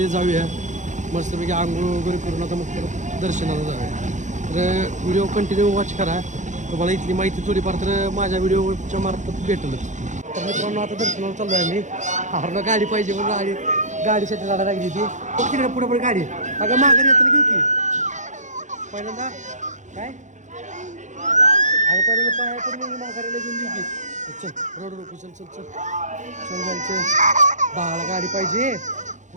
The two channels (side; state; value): left; late; 0.35 ms